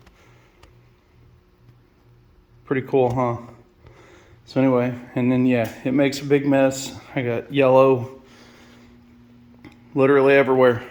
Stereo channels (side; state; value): both; identical; correlation 1.00